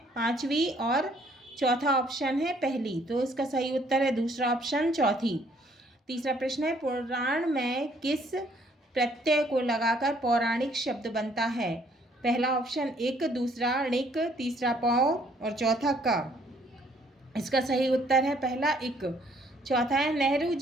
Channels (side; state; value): both; normal; correlation 0.64